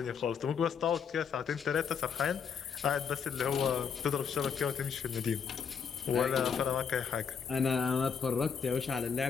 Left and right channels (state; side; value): quieter; right; 6.7 dB